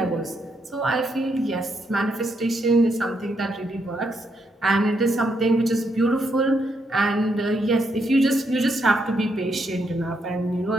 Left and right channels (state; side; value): normal; both; correlation 0.78